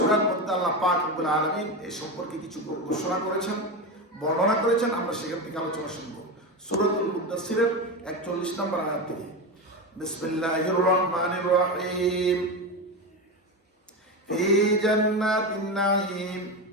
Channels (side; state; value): both; normal; correlation 0.18